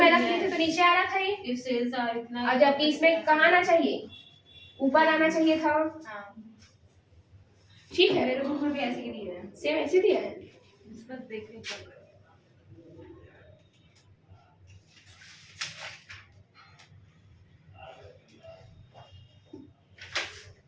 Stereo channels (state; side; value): identical; both; correlation 1.00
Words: रखते थे तो नीचे आ रहा था ये, इफ सेल्स आर इतना, और जबकि इसमें कहाँ आना चाहिए, ऊपर आना चाहिए था। हाँ ठीक है मेरे बुक में भी ऐसे ही दिया है। सेम ऐसे दिया है। इसमें देखने का